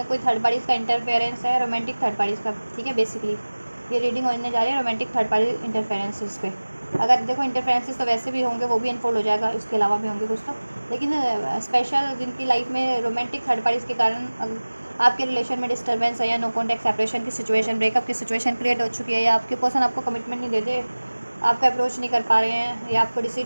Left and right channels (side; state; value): both; inverted; correlation -1.00